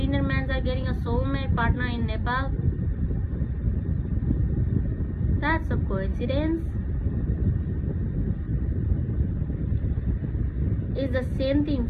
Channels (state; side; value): identical; both; correlation 1.00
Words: men are getting a soulmate partner in Nepal. That's a coincidence. It's the same thing